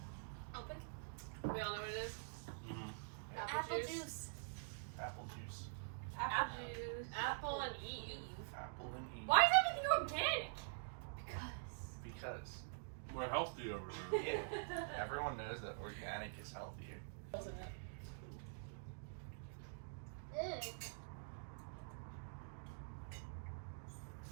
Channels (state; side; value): silent; left; digital silence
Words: Open. We all know what it is. Mm-hmm. Apple juice. Apple juice. Apple juice. Apple and Eve. Apple and Eve. Why is everything organic? Because. We're healthy over here. Yeah. Everyone knows that organic is healthier. Wasn't it? Mm.